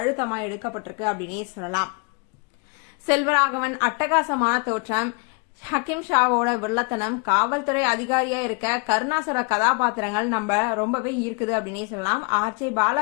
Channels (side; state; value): right; quieter; 32.8 dB